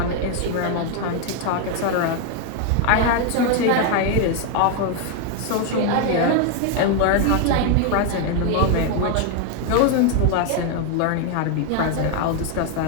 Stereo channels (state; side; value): different; both; correlation 0.01